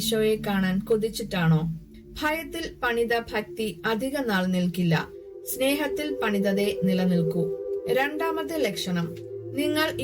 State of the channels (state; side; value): identical; both; correlation 1.00